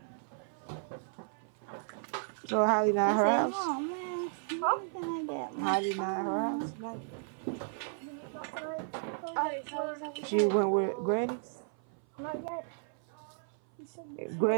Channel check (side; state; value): left; silent; 55 dB below the other